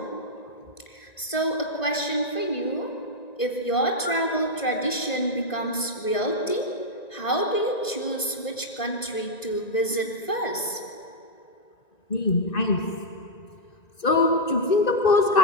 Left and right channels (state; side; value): late; right; 1.9 ms